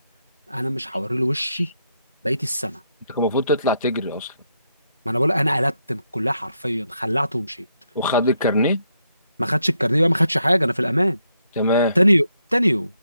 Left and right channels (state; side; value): inverted; both; correlation -0.78